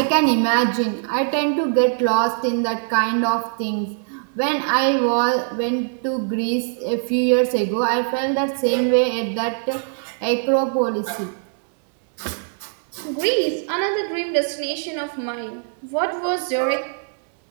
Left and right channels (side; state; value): left; silent; digital silence